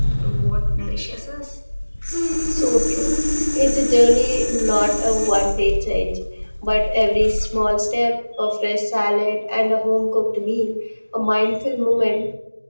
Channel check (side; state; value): both; inverted; correlation -1.00